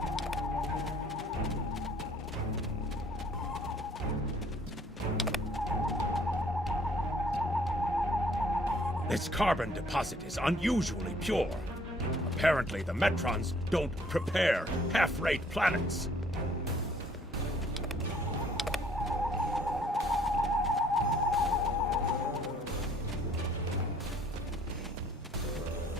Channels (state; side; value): normal; both; correlation 0.60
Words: This carbon deposit is unusually pure. Apparently, the Metrons don't prepare half-rate planets.